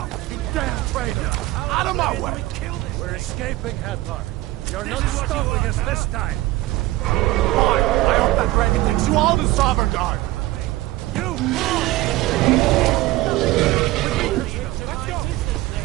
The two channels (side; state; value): left; quieter; 17.7 dB